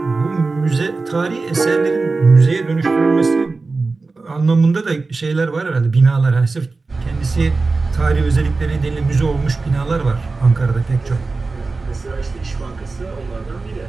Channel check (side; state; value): left; quieter; 3.8 dB